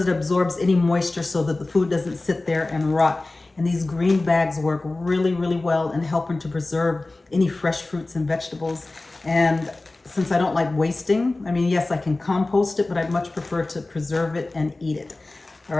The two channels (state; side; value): quieter; right; 3.1 dB